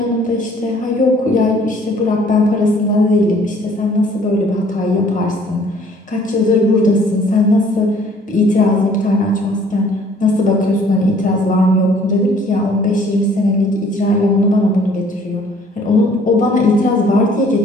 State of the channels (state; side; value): normal; both; correlation 0.57